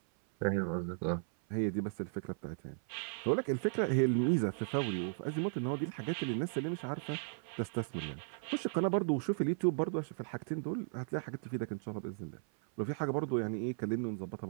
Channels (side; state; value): left; silent; 54 dB below the other